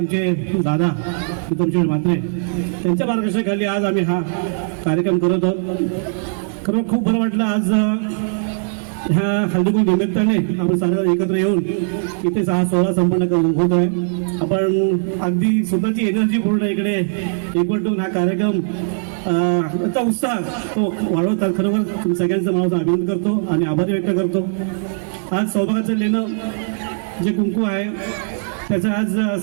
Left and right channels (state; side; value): silent; left; digital silence